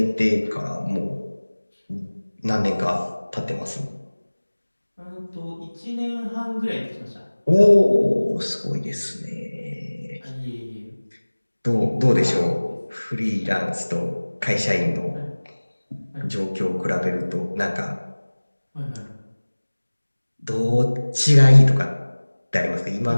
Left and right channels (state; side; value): inverted; both; correlation -1.00